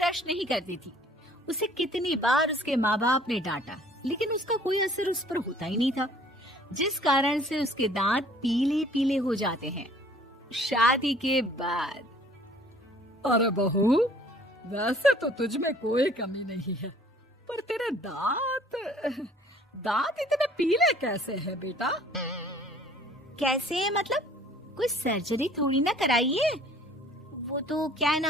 नहीं करती थी। उसे कितनी बार उसके माँ बाप ने डांटा, लेकिन उसका कोई असर उस पर होता ही नहीं था, जिस कारण से उसके दांत पीले पीले हो जाते हैं। शादी के बाद। अरे बहू, वैसे तो तुझ में कोई कमी नहीं है, पर तेरे दांत इतने पीले कैसे हैं बेटा? कैसे मतलब? कोई सर्जरी थोड़ी ना कराई है। वो तो क्या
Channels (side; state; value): both; normal; correlation 0.55